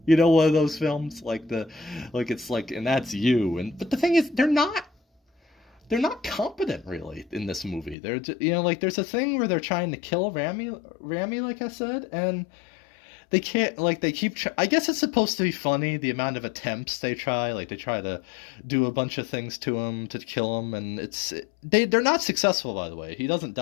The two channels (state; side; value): drops out; right; at 8.0 s